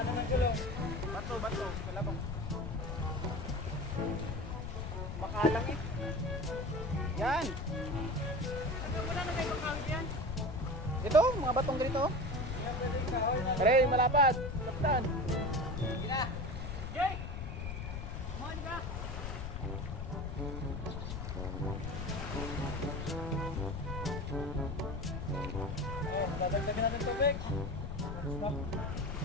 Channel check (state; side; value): noise; left; rumble, 5 dB below the sound